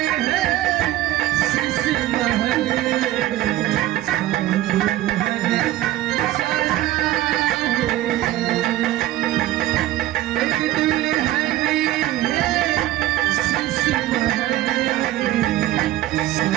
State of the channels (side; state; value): left; quieter; 15.0 dB